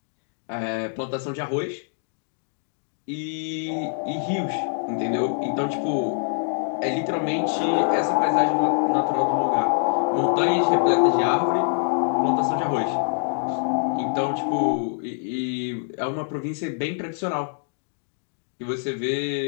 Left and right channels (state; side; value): silent; right; 62 dB below the other